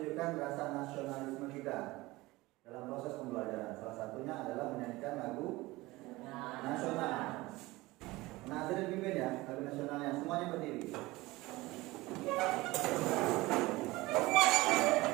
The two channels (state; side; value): quieter; left; 20.4 dB